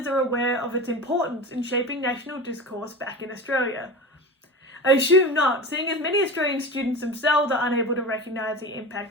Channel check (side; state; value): both; normal; correlation 0.29